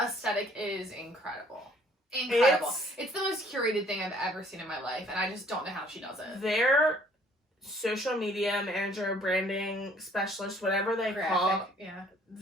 is incredible. Incredible. It's the most curated thing I've ever seen in my life, and I just don't know how she does it. Their social media manager, branding specialist, whatever they call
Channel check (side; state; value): both; normal; correlation 0.59